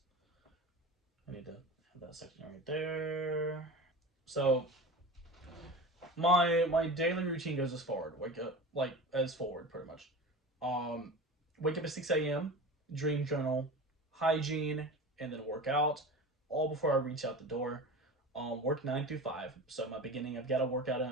I need to have that section right there. So my daily routine goes as forward. Wake up like as forward pretty much. Um, Wake up at 6 a.m. Dream journal, hygiene, and then work out. All before I reach out the door. Work 9 through 5. So my beginning, I've got to work out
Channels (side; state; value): both; normal; correlation 0.32